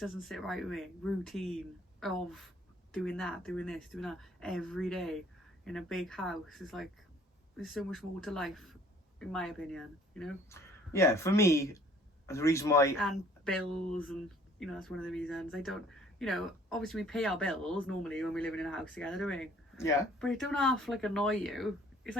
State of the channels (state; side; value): normal; both; correlation 0.56